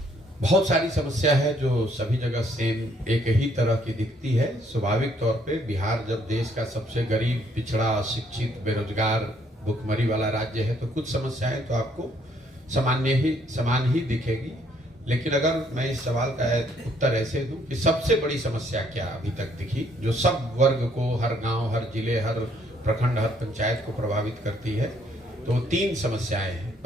बहुत सारी समस्या है जो सभी जगह सेम एक ही तरह की दिखती है। स्वाभाविक तौर पे बिहार जब देश का सबसे गरीब, पिछड़ा, अशिक्षित, बेरोजगार, भुखमरी वाला राज्य है तो कुछ समस्याएं तो आपको समान ही दिखेगी। लेकिन अगर मैं इस सवाल का उत्तर ऐसे दूं कि सबसे बड़ी समस्या क्या अभी तक दिखी जो सब वर्ग को, हर गांव, हर जिले, हर प्रखंड, हर पंचायत को प्रभावित करती है, तो 3 समस्याएं हैं।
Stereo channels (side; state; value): both; normal; correlation 0.67